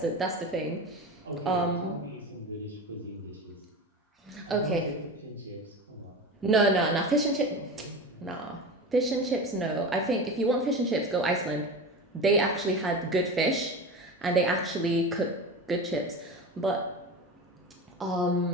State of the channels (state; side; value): normal; both; correlation 0.28